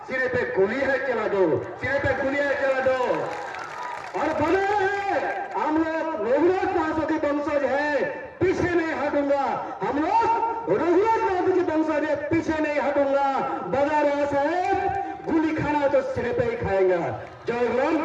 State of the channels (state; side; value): identical; both; correlation 1.00